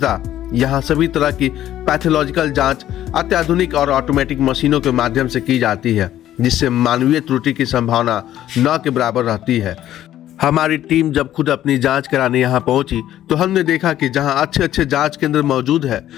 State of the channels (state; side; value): quieter; right; 12.5 dB